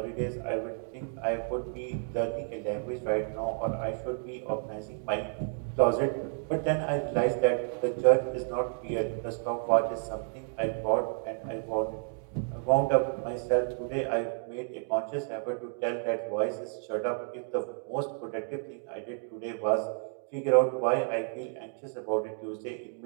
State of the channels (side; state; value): left; silent; 57 dB below the other